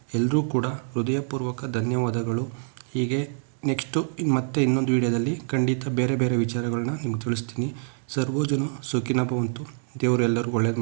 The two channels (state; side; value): silent; left; digital silence